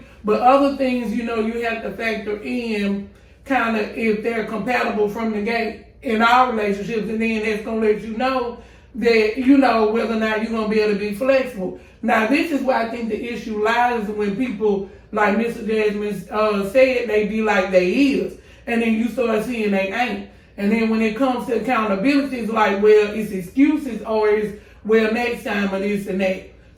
but other things, you have to factor in kind of if they're compatible from the gate in our relationships, and then that's going to let you know that, whether or not you're going to be able to be flexible. Now, this is where I think the issue lies when people, like Mr. Jazzman said, they be like they is, and then you start seeing they ain't. And then when it comes to accountability, it's like, well, it's excuses or it's, well, next time or this and that.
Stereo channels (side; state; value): both; identical; correlation 1.00